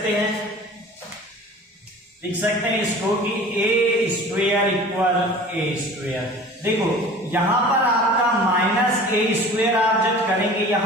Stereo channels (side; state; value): both; normal; correlation 0.42